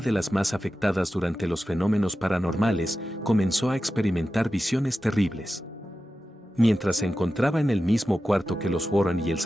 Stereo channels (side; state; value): both; normal; correlation 0.93